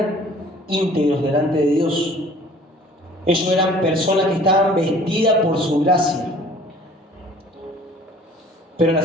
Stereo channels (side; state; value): both; normal; correlation 0.51